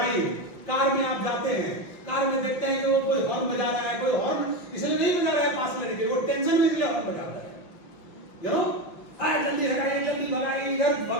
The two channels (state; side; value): late; right; 5.8 ms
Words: कार में आप जाते हैं, कार में देखते हैं कि वो कोई हॉर्न बजा रहा है, कोई हॉर्न इसलिए नहीं बजा रहा है पास लेने के लिए, वो टेंशन में इसलिए हॉर्न बजा रहा है। यू नो, जल्दी हटाइए, जल्दी भगाइए, इधर